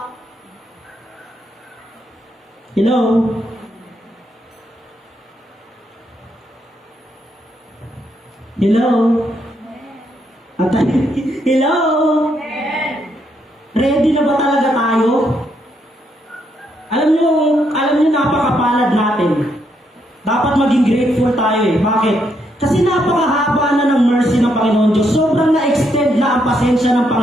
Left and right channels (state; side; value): normal; both; correlation 0.77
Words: Hello? Hello? Hello? Ready na ba talaga tayo? Alam nyo napakapalad natin. Dapat maging grateful tayo eh. Bakit? Kasi napakahaba na ng mercy ng Panginoon Diyos. Sobrang na-extend na ang pasensya ng